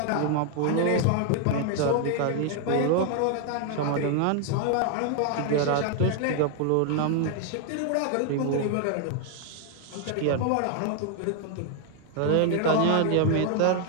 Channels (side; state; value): both; different; correlation 0.00